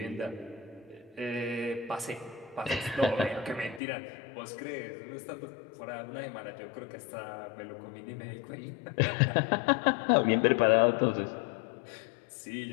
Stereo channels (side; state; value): right; drops out; at 3.8 s